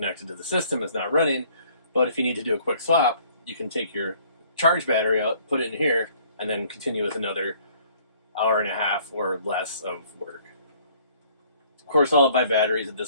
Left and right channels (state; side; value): inverted; both; correlation -0.59